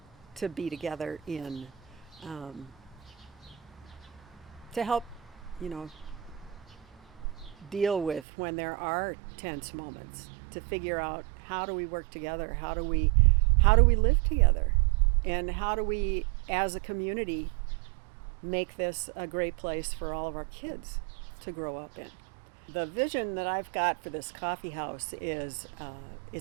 to be together in, to help deal with when there are tense moments, to figure out how do we work together, how do we live together, and how do we as a community make this a great place for all of our kids to grow up in. The vision that I've got for this coffee house is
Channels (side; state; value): left; drops out; at 8.2 s